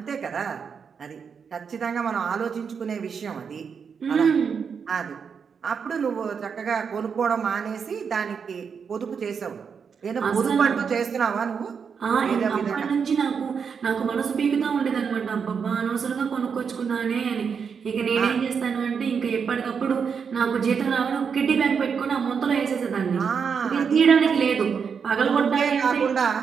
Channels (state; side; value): quieter; left; 6.4 dB